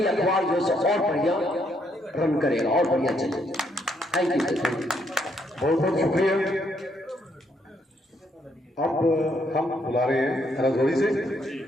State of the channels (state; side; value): normal; both; correlation 0.73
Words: अखबार जो है और बढ़िया रन करेगा और बढ़िया चलेगा। थैंक यू, बहुत बहुत शुक्रिया। अब हम बुला रहे हैं राजौरी से।